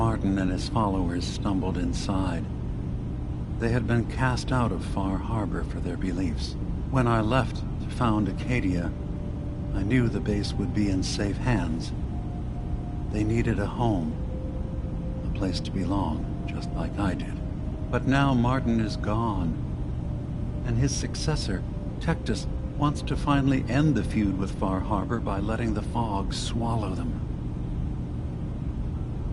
and his followers stumbled inside. They had been cast out of Far Harbor for their beliefs. When I left to found Acadia, I knew the base would be in safe hands. They needed a home, a place to belong, just like I did. But now Martin is gone, and his successor, Tectus, wants to finally end the feud with Far Harbor by letting the fog swallow them.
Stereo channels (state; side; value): identical; both; correlation 1.00